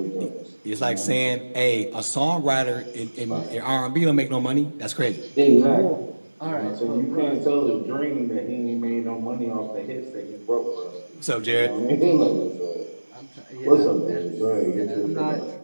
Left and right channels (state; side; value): inverted; both; correlation -1.00